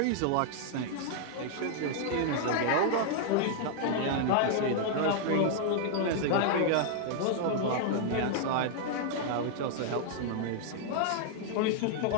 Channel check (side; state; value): both; different; correlation -0.01